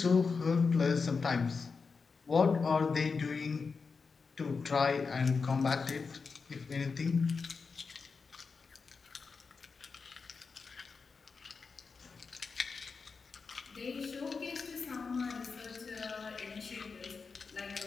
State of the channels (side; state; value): right; quieter; 4.9 dB